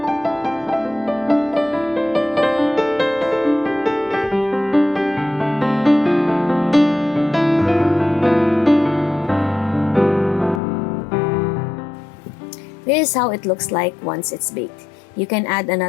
This is how it looks like once it's baked. You can add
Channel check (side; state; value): right; drops out; at 10.6 s